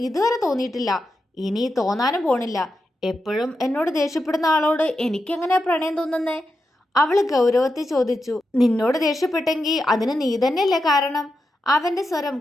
ഇതുവരെ തോന്നിയിട്ടില്ല, ഇനി തോന്നാനും പോണില്ല. എപ്പോഴും എന്നോട് ദേഷ്യപ്പെടുന്ന ആളോട് എനിക്കെങ്ങനെ പ്രണയം തോന്നുന്നേ? അവൾ ഗൗരവത്തിൽ ചോദിച്ചു. നിന്നോട് ദേഷ്യപ്പെട്ടെങ്കിൽ അതിന് നീ തന്നെയല്ലേ കാരണം? അവന്റെ സ്വരം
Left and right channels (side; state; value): both; normal; correlation 0.88